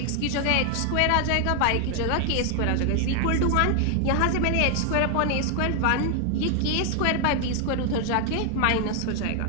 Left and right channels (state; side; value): different; both; correlation 0.00